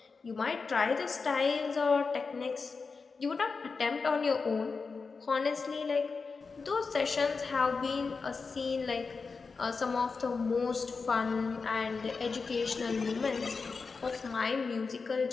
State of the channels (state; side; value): quieter; right; 4.7 dB